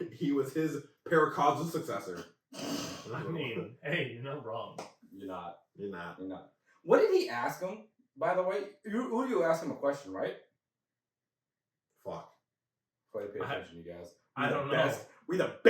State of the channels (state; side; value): identical; both; correlation 1.00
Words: he was his paracausal successor. I mean, hey, you're not wrong. You're not. You're not. What did he ask him? By the way, you asked him a question, right? Fuck. Quite pay attention, you guys. I don't know. We the